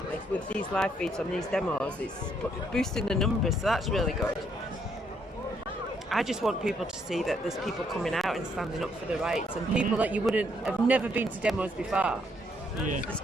with these live feeds on these demos. It's boosting the numbers, so that's really good. I just want people to see that there's people coming out and standing up for the rights, and people that you have never been to demos before. Yeah. There's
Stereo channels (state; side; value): normal; both; correlation 0.71